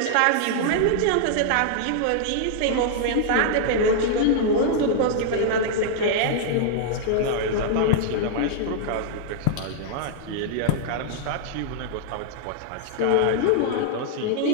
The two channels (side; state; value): both; different; correlation -0.01